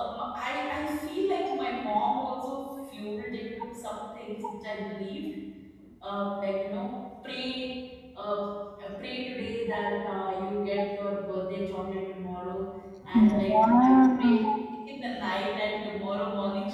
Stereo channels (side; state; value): both; identical; correlation 1.00